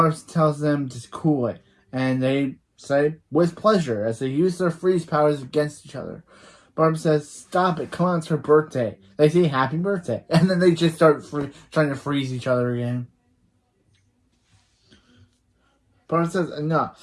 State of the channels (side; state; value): both; identical; correlation 1.00